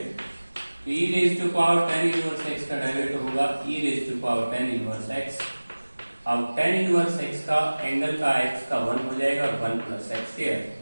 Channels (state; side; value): inverted; both; correlation -1.00